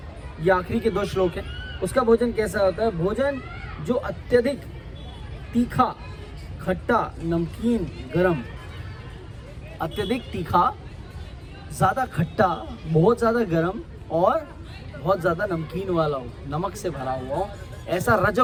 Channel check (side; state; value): both; identical; correlation 1.00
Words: ये आखिरी के 2 श्लोक है। उसका भोजन कैसा होता है? भोजन जो अत्यधिक तीखा, खट्टा, नमकीन, गरम, अत्यधिक तीखा, ज़्यादा खट्टा, बहुत ज़्यादा गरम और बहुत ज़्यादा नमकीन वाला हो, नमक से भरा हुआ हो, ऐसा